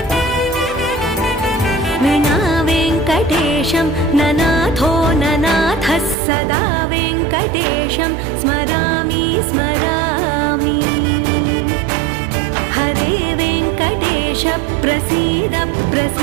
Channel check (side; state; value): left; drops out; at 6.2 s